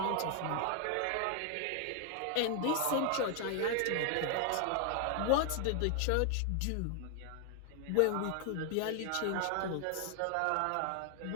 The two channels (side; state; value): both; different; correlation 0.00